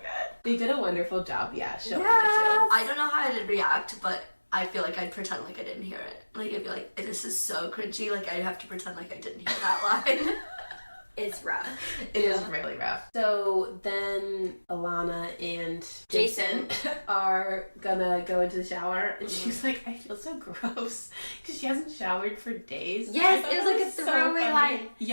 good. They did a wonderful job, yeah, showing Yes. I don't know how I'd react, but I feel like I'd pretend like I didn't hear it. Like, I'd be like, this is so cringy, like, I'd have to pretend like I didn't hear that line. It's rough. it too. It is really rough. So then Ilana and Jason are gonna go into the shower, and she's like, I feel so gross because she hasn't showered for days. Yes, I thought it was that like a throwaway funny. line.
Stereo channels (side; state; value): both; inverted; correlation -1.00